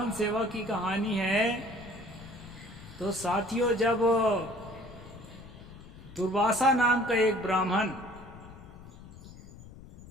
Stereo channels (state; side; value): noise; left; rumble, 17 dB below the sound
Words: सेवा की कहानी है। तो साथियों, जब दुर्वासा नाम का एक ब्राह्मण